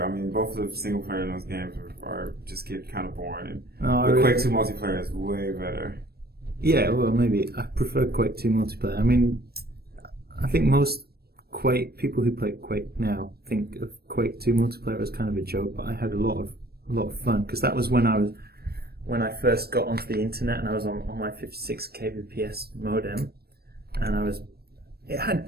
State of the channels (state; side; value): late; left; 0.46 ms